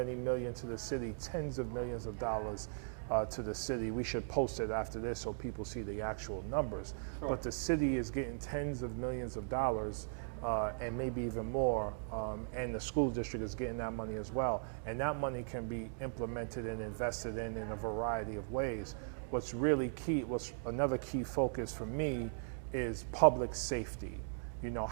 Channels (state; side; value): silent; left; digital silence